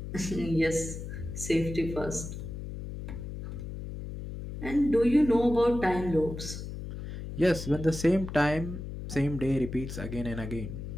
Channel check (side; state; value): left; noise; hum, 8 dB below the sound